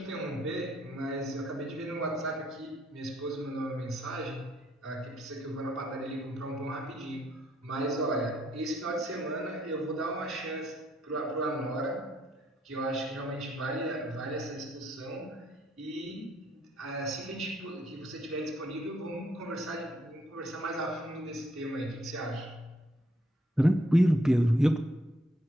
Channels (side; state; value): both; normal; correlation 0.70